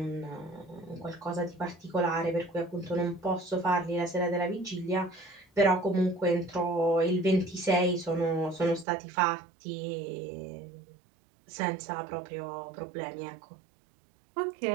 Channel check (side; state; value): left; drops out; at 8.8 s